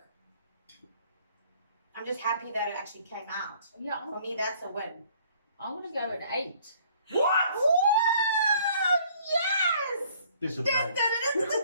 I'm just happy that it actually came out. Yeah, For me, that's a win. I want to go at 8. What? Woo! Yes! This is Dun, lead. dun, dun, dun,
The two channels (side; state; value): both; inverted; correlation -0.58